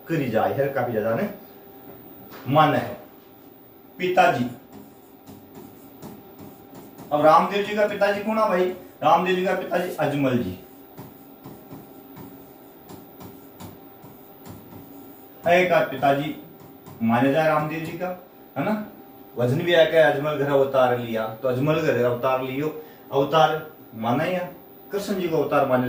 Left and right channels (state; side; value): identical; both; correlation 1.00